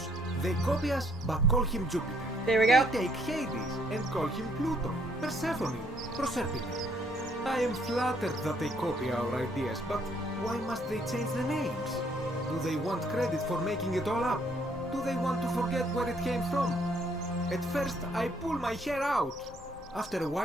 they copy us, but call him Jupiter. There we go. They take Hades and call him Pluto, Persephone, Proserpine. I am flattered that they copy our ideas, but why must they change the names? Do they want credit for making it all up? Do they want to forget where it came from? At first, I pull my hair out. After a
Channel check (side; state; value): both; normal; correlation 0.67